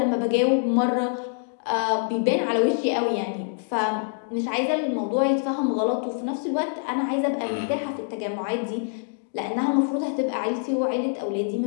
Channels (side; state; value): right; silent; digital silence